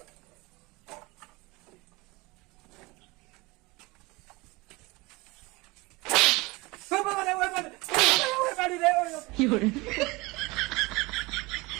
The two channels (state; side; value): quieter; left; 23.7 dB